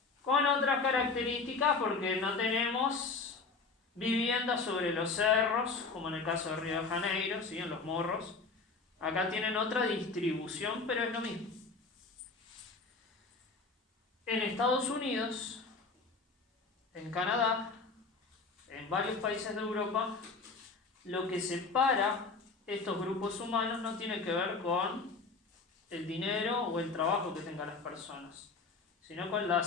Con otras características, porque no tenemos viviendas sobre los cerros, como en el caso de Río de Janeiro, ¿sí? En los morros. Acá tienen otra distribución, pero es lo mismo. En Estados Unidos, en Canadá, en varios países de Europa, lo que separa estos grupos humanos no tiene que ver con el dinero o el trabajo que tengan las personas, sino con la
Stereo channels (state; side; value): quieter; right; 4.1 dB